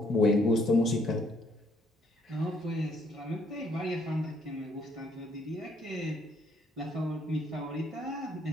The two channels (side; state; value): both; normal; correlation 0.68